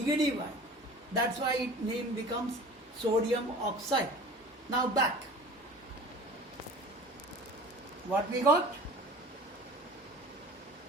ion. That's why its name becomes sodium oxide. Now back. What we got?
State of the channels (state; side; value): normal; both; correlation 0.41